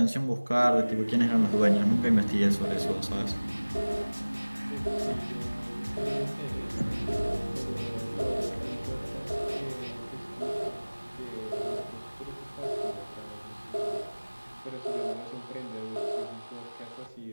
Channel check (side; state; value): both; inverted; correlation -1.00